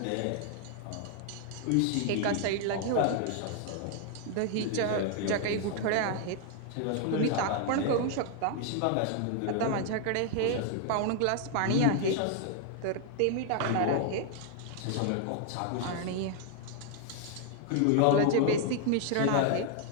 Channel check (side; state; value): both; different; correlation 0.00